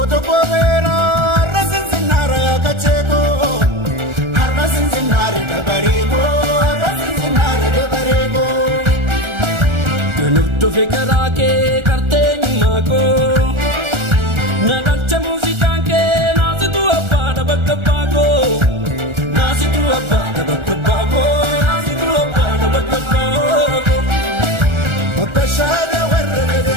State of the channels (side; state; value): left; late; 1.4 ms